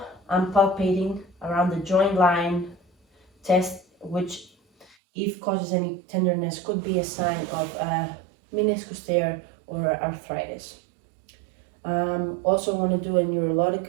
I'm palpating around the joint line test, which if causes any tenderness could be a sign of meniscus tear or arthritis. Also want to do a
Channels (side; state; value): left; drops out; at 5.0 s